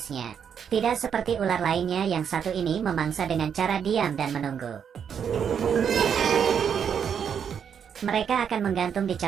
Tidak seperti ular lainnya yang satu ini memangsa dengan cara diam dan menunggu. Mereka akan menggantung di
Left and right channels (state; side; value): quieter; left; 7.7 dB